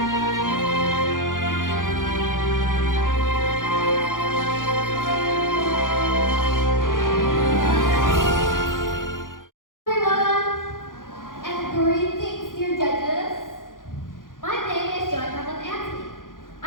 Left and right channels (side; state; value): right; late; 0.90 ms